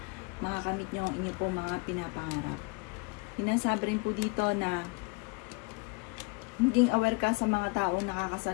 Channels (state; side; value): quieter; right; 29.4 dB